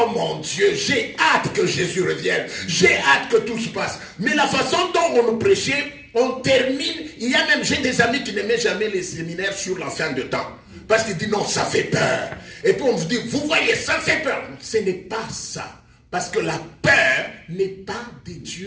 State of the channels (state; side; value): identical; both; correlation 1.00